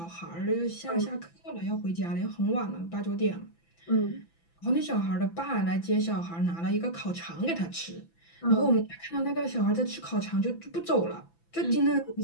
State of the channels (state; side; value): late; right; 5.9 ms